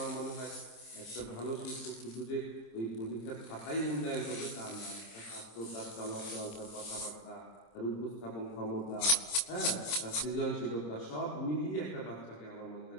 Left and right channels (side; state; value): right; late; 27 ms